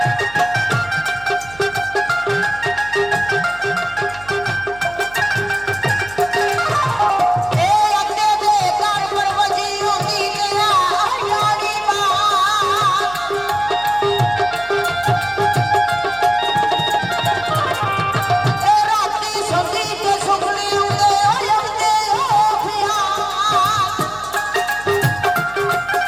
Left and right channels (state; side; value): noise; right; hum, 21 dB below the sound